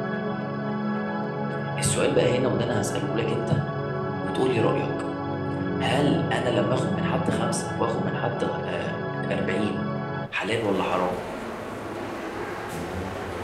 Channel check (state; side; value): identical; both; correlation 1.00